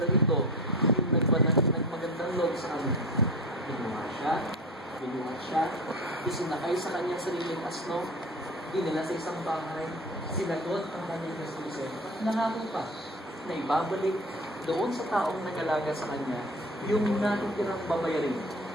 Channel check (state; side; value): normal; both; correlation 0.32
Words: ito, yung nagmagandang loob sa kanya. Binuha siya, isinakay sa kanyang sariling asno, dinala sa isang bahay, sinagot ang kanyang gastusin. Nangako pa na ibabalik doon sa taong nag-alaga sa kanya yung natitirang babayarin